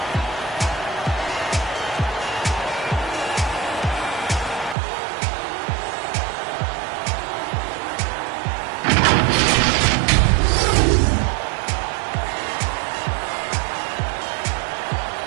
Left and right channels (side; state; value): left; drops out; at 4.8 s